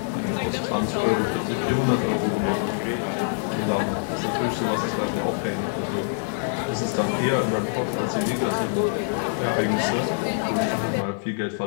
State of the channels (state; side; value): silent; right; 62 dB below the other